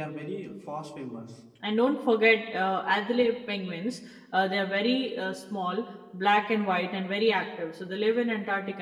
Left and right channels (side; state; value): both; identical; correlation 1.00